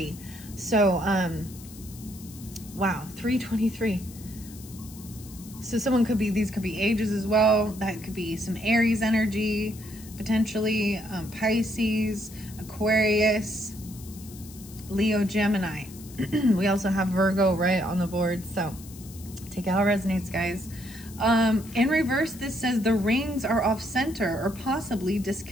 So, wow, 323. So someone could be, these could be ages as well. That could be some Aries energy, potentially, Pisces, Aquarius, Leo, Gemini. We also have Virgo right on the board. So take it how it resonates, guys. In reverse, this says the rings are off center or possibly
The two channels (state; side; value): noise; left; hiss, 18 dB below the sound